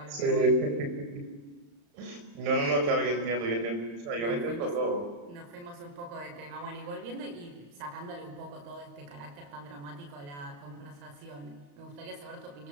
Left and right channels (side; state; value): left; late; 35 ms